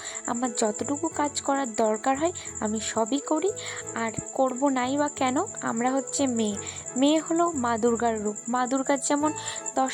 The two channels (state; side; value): identical; both; correlation 1.00